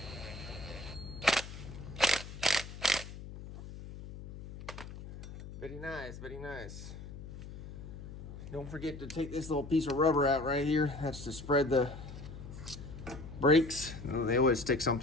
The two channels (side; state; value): left; noise; hum, 12 dB below the sound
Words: Very nice, very nice. Don't forget to take this little piece of rubber out right here. That's to spread the brakes. They always stick